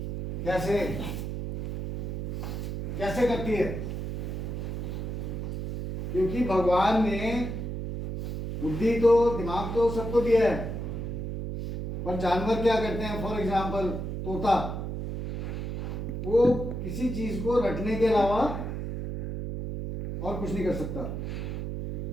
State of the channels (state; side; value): noise; right; hum, 4 dB below the sound